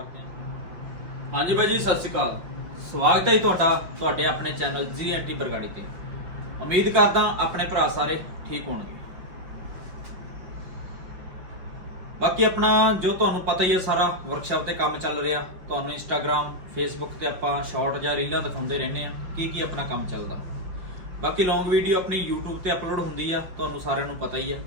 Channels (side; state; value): left; late; 5.3 ms